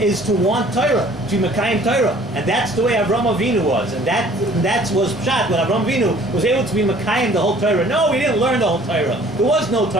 to want Torah, to Mekayim Torah. And that's the way Avram Avinu was. And that was Pshat, when Avram Avinu was able to be Mekayim the whole Torah. No, he didn't learn the whole Torah. There was no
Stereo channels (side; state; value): both; normal; correlation 0.54